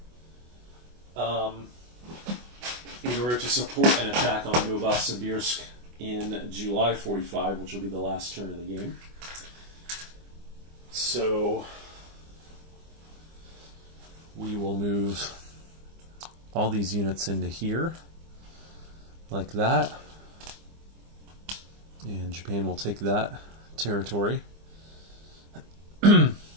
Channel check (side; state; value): left; late; 24 ms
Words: In order to support an attack on Novosibirsk in July 45, which will be the last turn of the game. So we will move all these units into here, like that. And Japan will take that territory.